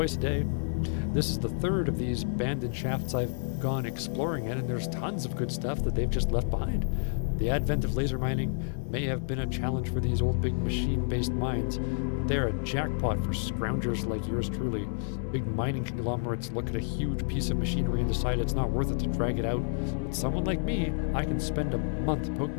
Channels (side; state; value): right; silent; 58 dB below the other